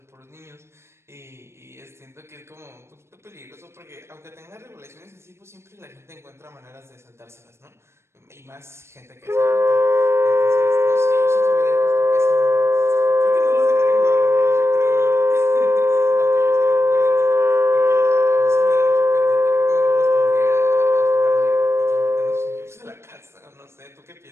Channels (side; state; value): left; late; 0.13 ms